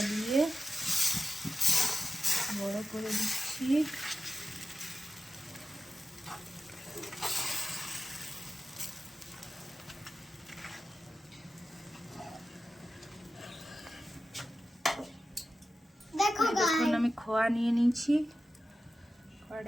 দিয়ে বড় করে দিচ্ছি। দেখুন আমি খোয়া নিয়ে নিয়েছি,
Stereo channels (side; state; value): both; normal; correlation 0.93